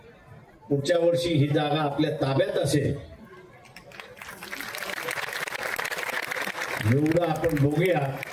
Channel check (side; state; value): both; identical; correlation 1.00